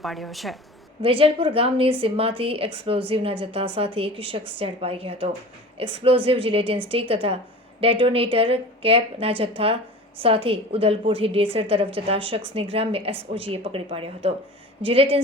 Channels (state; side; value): normal; both; correlation 0.38